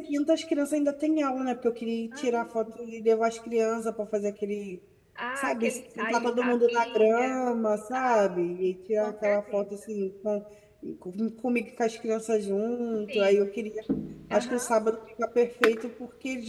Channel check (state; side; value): identical; both; correlation 1.00